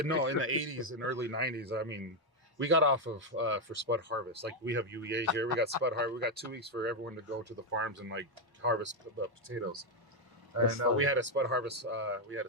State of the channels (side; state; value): both; normal; correlation 0.03